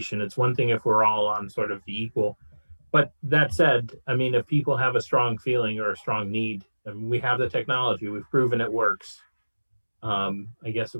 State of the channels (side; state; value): both; inverted; correlation -1.00